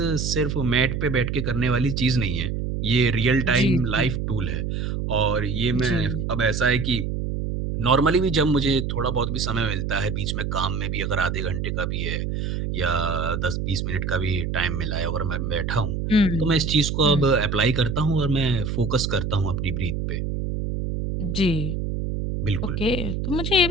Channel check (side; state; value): right; noise; hum, 2 dB below the sound